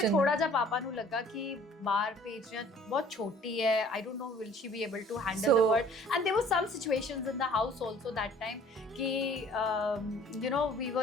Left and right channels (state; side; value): normal; both; correlation 0.53